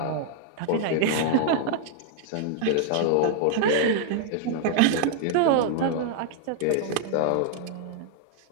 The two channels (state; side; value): different; both; correlation 0.00